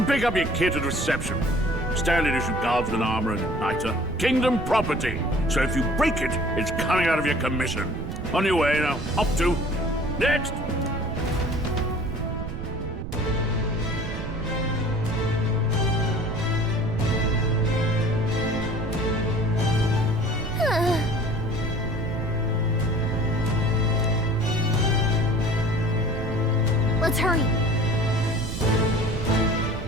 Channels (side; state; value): right; noise; rumble, 7 dB below the sound